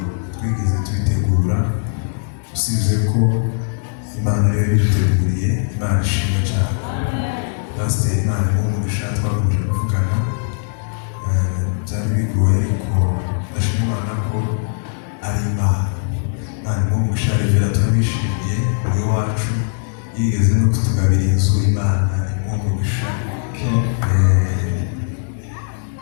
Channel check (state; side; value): silent; right; digital silence